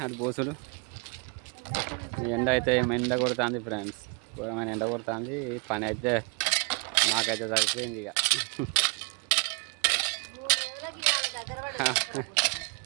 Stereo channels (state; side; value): quieter; left; 33.4 dB